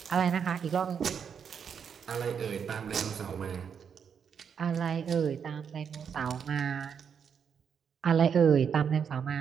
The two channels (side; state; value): left; quieter; 7.2 dB